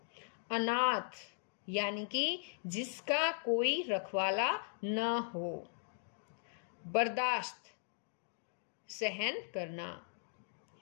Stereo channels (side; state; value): right; silent; digital silence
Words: अनाथ यानी कि जिसका कोई रखवाला न हो। बर्दाश्त, सहन करना।